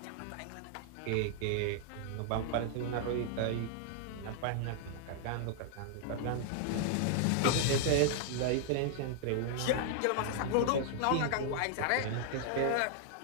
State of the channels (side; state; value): both; different; correlation 0.00